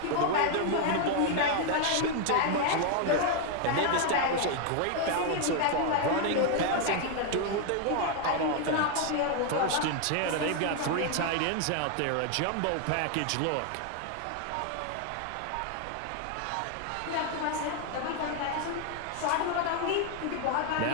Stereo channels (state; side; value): different; both; correlation 0.00